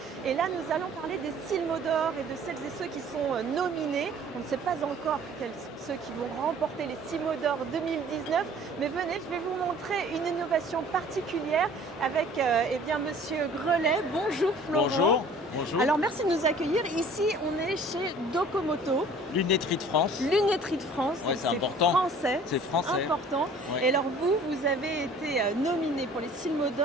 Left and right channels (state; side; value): normal; both; correlation 0.50